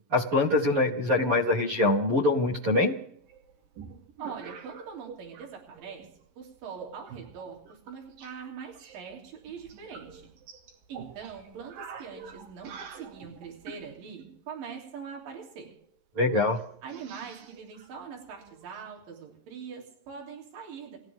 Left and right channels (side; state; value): left; late; 11 ms